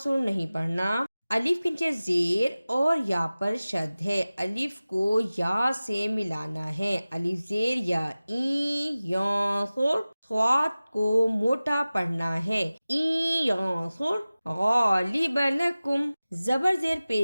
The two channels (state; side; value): inverted; both; correlation -0.97